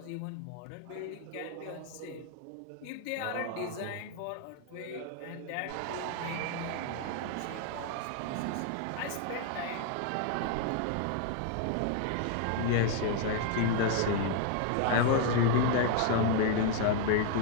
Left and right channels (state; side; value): different; both; correlation 0.00